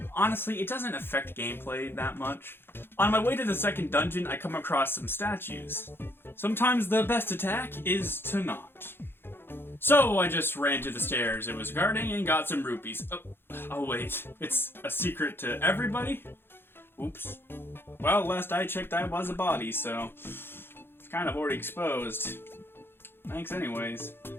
honestly, it doesn't affect gameplay that much. On my way to the second dungeon, I come across some statues. Sometimes the best attack is to not. So I just ran to the stairs it was guarding and got some rupees. Oh wait, it's a secret to everybody? Oops. Well, last I checked I was a body, so it's kind of already exposed. Thanks anyways.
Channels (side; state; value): right; late; 0.11 ms